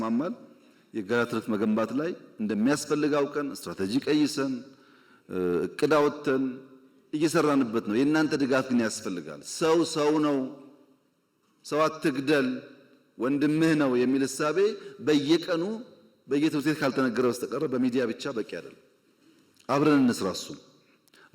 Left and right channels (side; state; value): both; identical; correlation 1.00